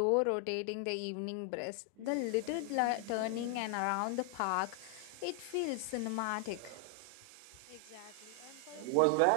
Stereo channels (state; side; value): different; both; correlation 0.00